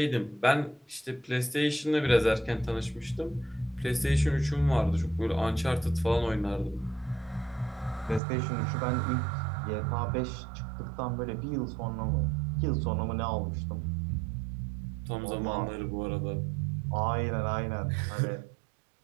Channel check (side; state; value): left; drops out; at 8.2 s